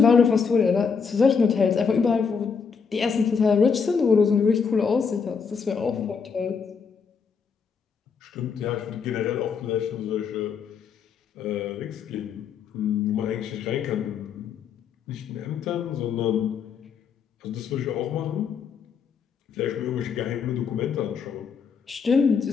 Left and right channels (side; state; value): right; quieter; 6.0 dB